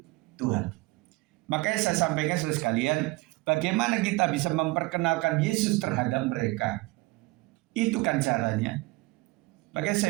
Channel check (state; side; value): quieter; left; 22.2 dB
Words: Tuhan. Makanya saya sampaikan saudara sekalian, bagaimana kita bisa memperkenalkan Yesus terhadap mereka. Itu kan caranya. Makanya